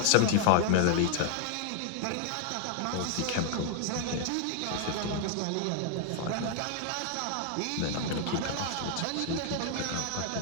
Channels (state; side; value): different; both; correlation 0.00